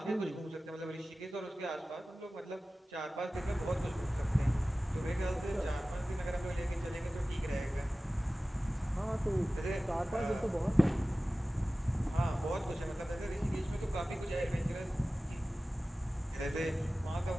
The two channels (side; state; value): both; normal; correlation 0.96